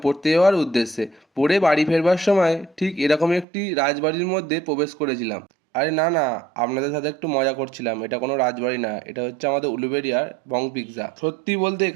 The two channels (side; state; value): left; drops out; at 3.5 s